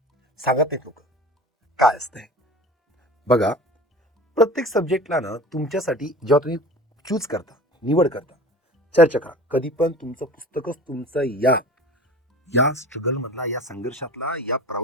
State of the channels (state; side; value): normal; both; correlation 0.39